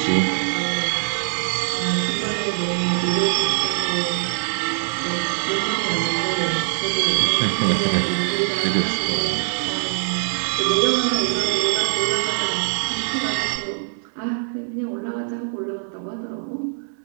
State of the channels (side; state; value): left; silent; 60 dB below the other